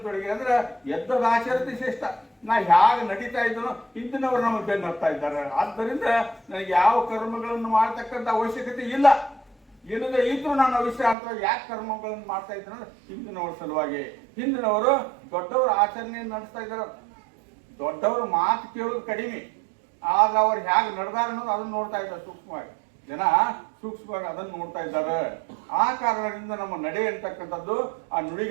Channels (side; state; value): left; drops out; at 11.2 s